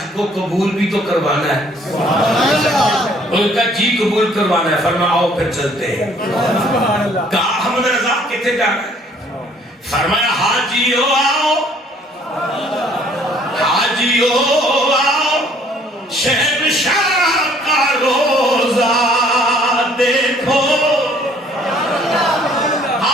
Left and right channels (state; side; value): normal; both; correlation 0.60